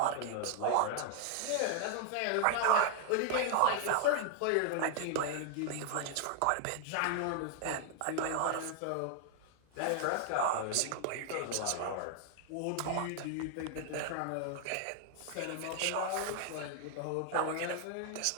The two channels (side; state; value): both; different; correlation 0.00